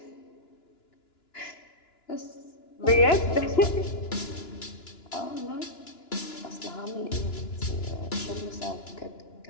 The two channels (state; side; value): late; right; 2.9 ms